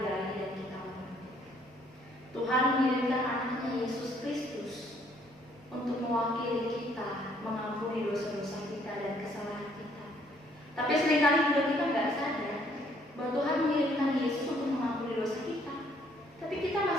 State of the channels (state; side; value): normal; both; correlation 0.65